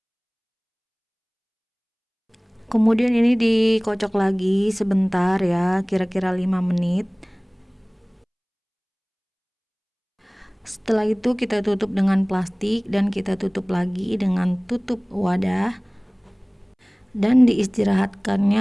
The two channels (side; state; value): both; identical; correlation 1.00